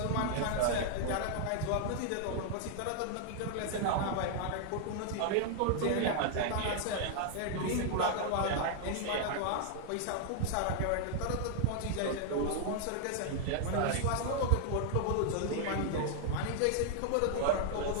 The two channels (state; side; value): different; both; correlation 0.00